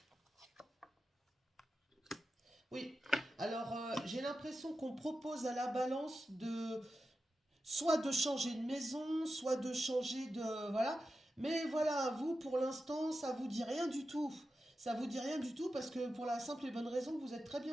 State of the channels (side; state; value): both; normal; correlation 0.91